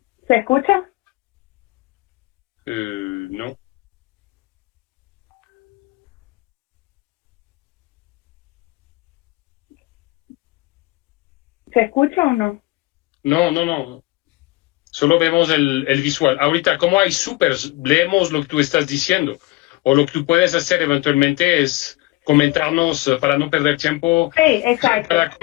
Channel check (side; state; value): right; quieter; 21.4 dB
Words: ¿Se escucha? No. ¿Se escucha o no? No. Solo vemos el visual. Ahorita, como hay supers, leemos lo que tú estás diciendo. O lo que tú puedes hacer eventualmente es comentarnos, para no perder tiempo, Sí, exacto. para